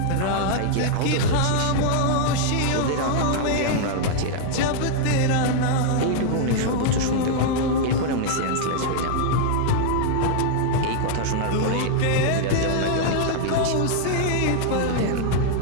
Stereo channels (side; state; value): both; different; correlation -0.01